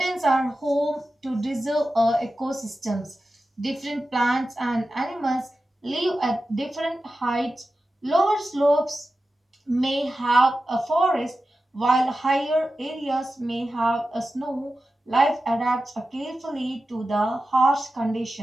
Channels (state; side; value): normal; both; correlation 0.93